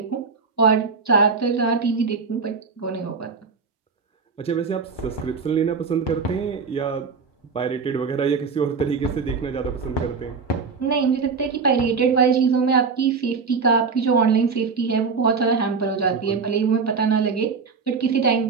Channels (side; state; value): left; quieter; 5.1 dB